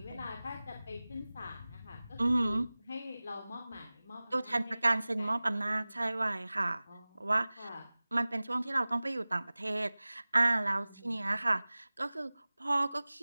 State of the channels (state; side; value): inverted; both; correlation -0.99